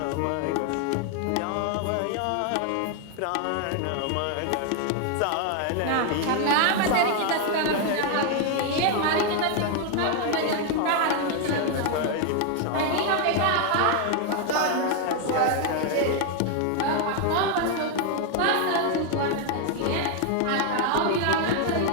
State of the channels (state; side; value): different; both; correlation 0.01